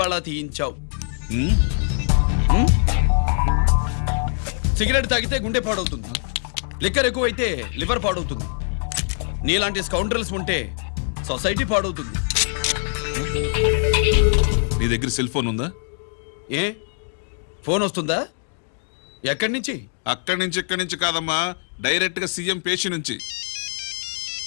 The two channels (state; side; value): silent; right; digital silence